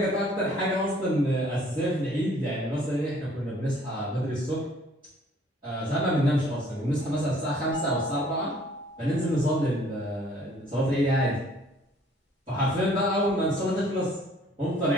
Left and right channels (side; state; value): both; normal; correlation 0.58